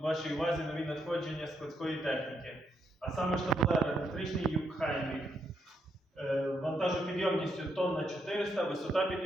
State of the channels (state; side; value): normal; both; correlation 0.77